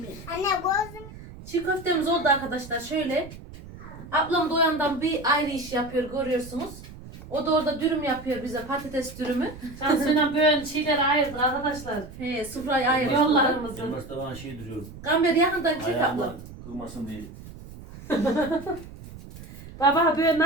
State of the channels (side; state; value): right; noise; rumble, 16 dB below the sound